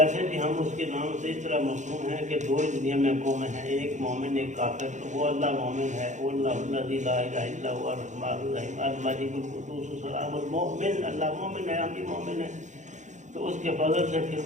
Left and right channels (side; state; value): left; late; 0.35 ms